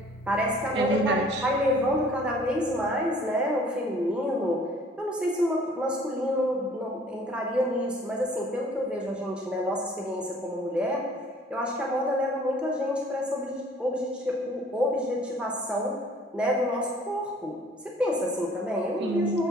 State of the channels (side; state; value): both; normal; correlation 0.54